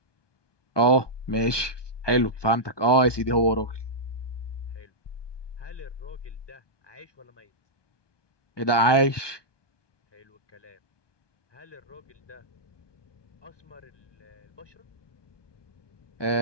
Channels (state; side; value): late; right; 1.2 ms